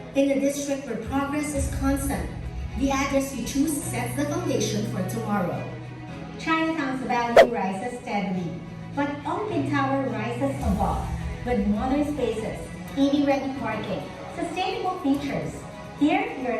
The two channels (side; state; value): both; identical; correlation 1.00